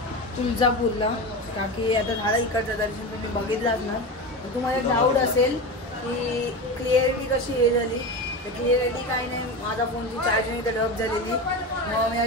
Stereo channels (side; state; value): both; normal; correlation 0.23